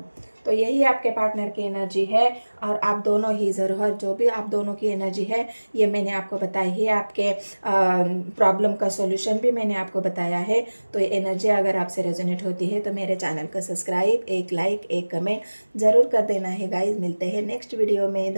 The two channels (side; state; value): both; inverted; correlation -1.00